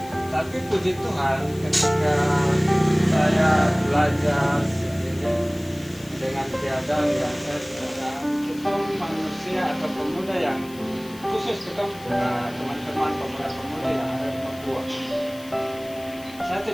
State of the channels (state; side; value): noise; left; hiss, 20 dB below the sound